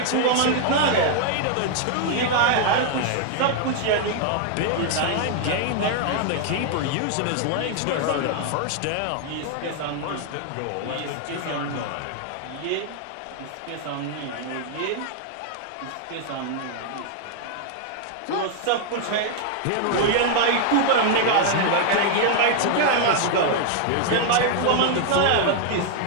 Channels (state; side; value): different; both; correlation 0.00